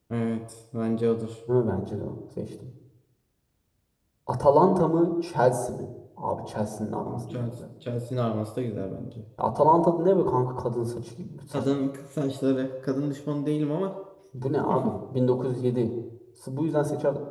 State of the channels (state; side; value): identical; both; correlation 1.00